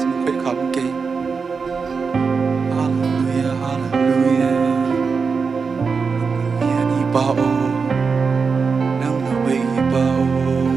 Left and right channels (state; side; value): quieter; left; 5.2 dB